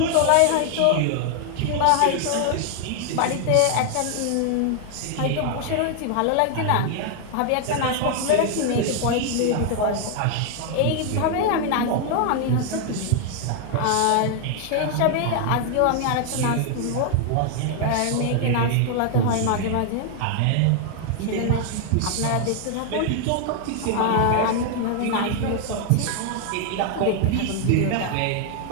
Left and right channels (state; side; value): different; both; correlation 0.00